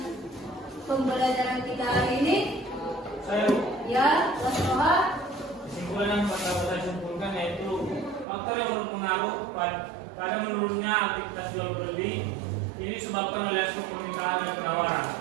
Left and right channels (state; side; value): drops out; left; at 8.2 s